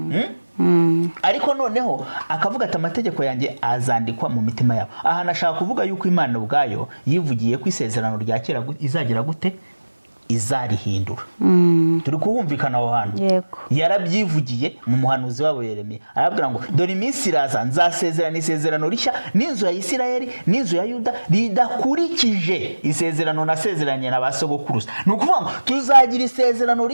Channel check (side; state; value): both; inverted; correlation -1.00